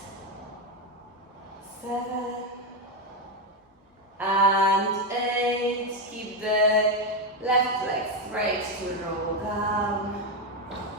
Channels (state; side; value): normal; both; correlation 0.08